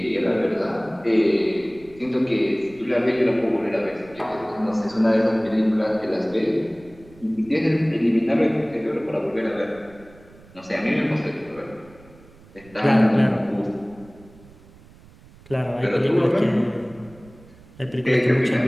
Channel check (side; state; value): right; noise; rumble, 24 dB below the sound